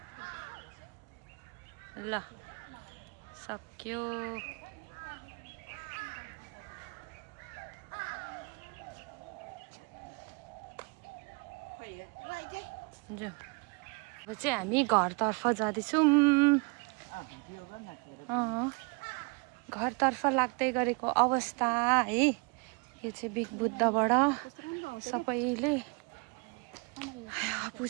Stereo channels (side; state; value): left; quieter; 32.8 dB